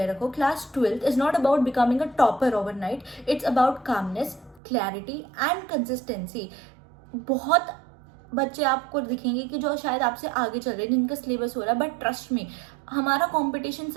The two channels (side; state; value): left; drops out; at 4.6 s